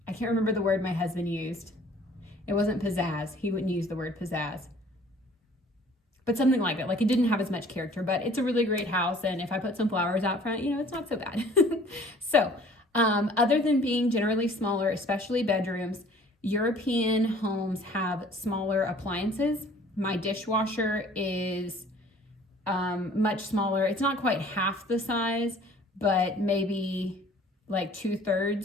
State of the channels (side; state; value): both; normal; correlation 0.52